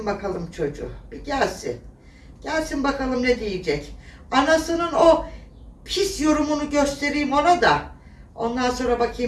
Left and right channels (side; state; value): both; identical; correlation 1.00